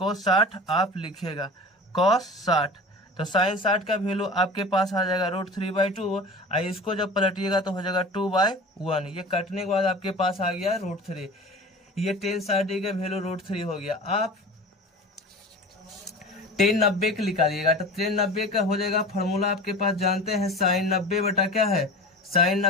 60 आप लिखिएगा cos 60, तो साइन 60 का वैल्यू आपके पास आ जाएगा √3/2, और इसको जब पलटिएगा तो हो जाएगा 2/1, ये कटने के बाद आपके पास आ गया √3, ये tan 60 डिग्री का वैल्यू √3 हो गया। आप tan 90 का निकालिएगा, तो tan 90 का हो जाएगा फार्मूला आपके पास जानते हैं, साइन 90 बटा क्या है साइन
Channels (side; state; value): both; normal; correlation 0.36